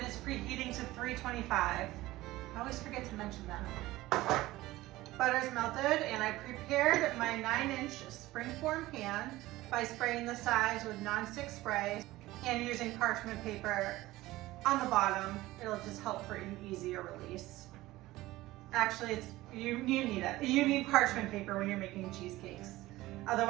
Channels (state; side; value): quieter; left; 17.7 dB